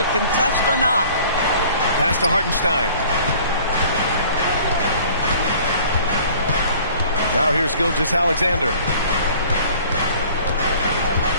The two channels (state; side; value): inverted; both; correlation -0.50